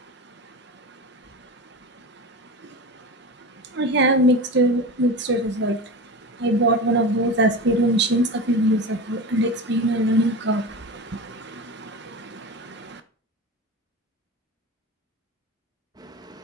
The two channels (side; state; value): both; normal; correlation 0.28